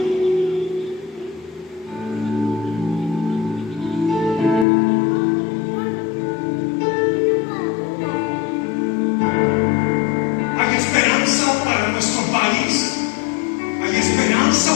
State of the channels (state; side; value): drops out; right; at 4.7 s